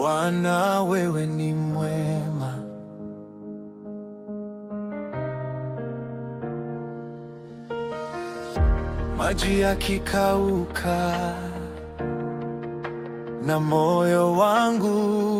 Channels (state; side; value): identical; both; correlation 1.00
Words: wewe ni mwema. Maji yakikauka na moyo wangu